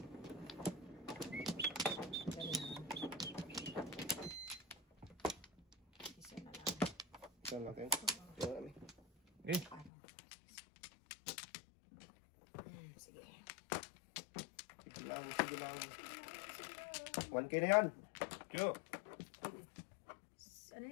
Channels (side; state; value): right; drops out; at 9.9 s